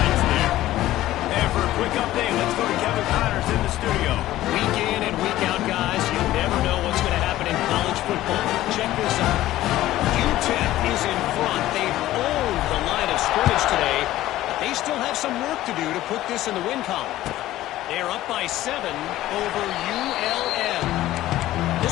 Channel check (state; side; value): quieter; right; 15.0 dB